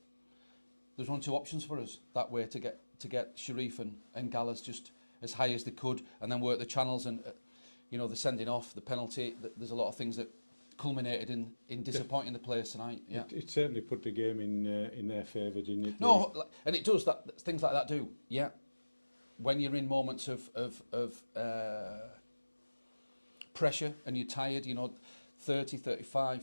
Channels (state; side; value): inverted; both; correlation -1.00